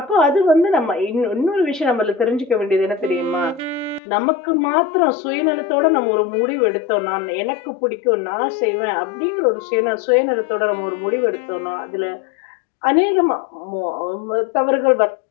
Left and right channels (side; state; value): right; drops out; at 4.0 s